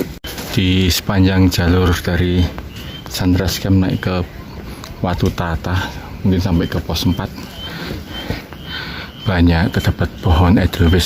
Di sepanjang jalur dari Sandras Camp naik ke Watu Tata, mungkin sampai ke pos 4, banyak terdapat pohon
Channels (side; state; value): both; identical; correlation 1.00